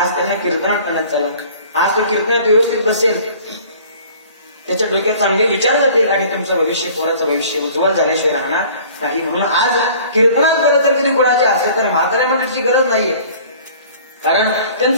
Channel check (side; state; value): both; inverted; correlation -0.49